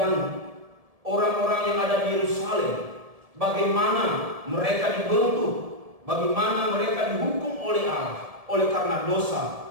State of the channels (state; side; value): late; left; 1.7 ms